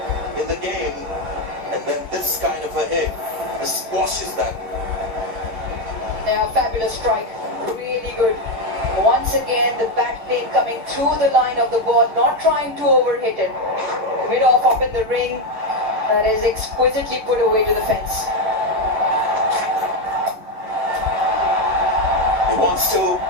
in the game, and then this kind of a hit squashes that. Yeah, fabulous strike. Really good. Once again, the back plane coming through the line of the ball, not trying to overhit it. Mid off up in the ring. That is exquisitely put away to the fence. He wants to.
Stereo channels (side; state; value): left; late; 10 ms